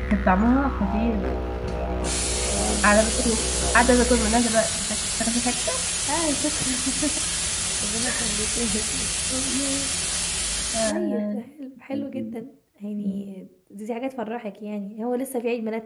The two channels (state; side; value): identical; both; correlation 1.00